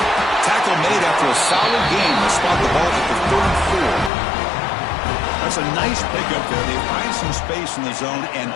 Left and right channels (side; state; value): right; drops out; at 4.1 s